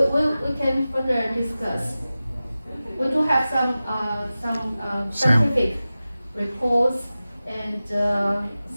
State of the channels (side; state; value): both; inverted; correlation -0.96